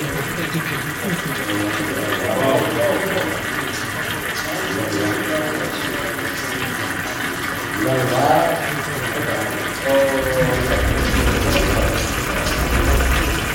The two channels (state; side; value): identical; both; correlation 1.00